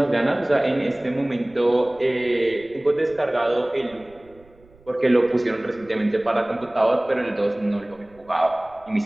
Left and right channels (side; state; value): right; noise; rumble, 28 dB below the sound